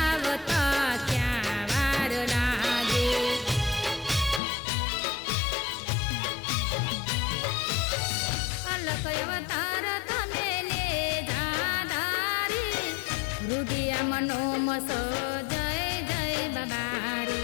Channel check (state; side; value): drops out; right; at 4.4 s